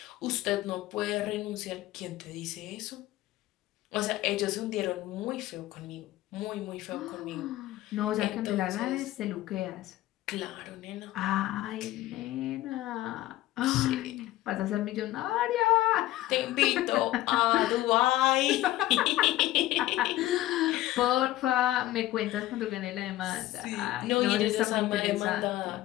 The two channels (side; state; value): right; quieter; 15.8 dB